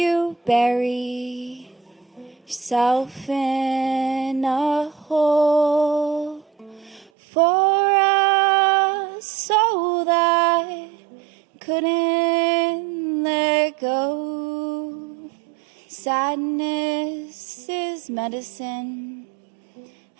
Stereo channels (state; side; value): drops out; left; at 7.1 s